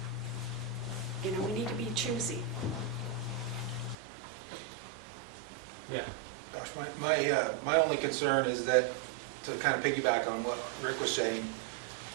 we need to be choosy. Yeah. Gosh, my only concern is that, to kind of piggyback on what Rick was saying,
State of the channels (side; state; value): left; drops out; at 4.0 s